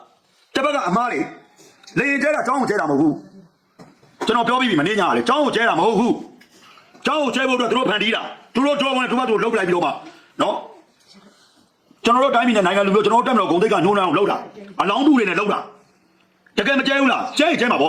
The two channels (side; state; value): both; identical; correlation 1.00